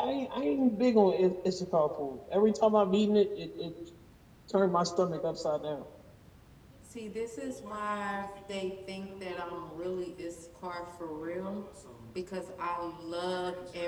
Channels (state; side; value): identical; both; correlation 1.00